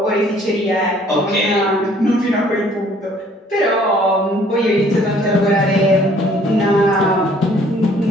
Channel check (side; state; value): both; normal; correlation 0.59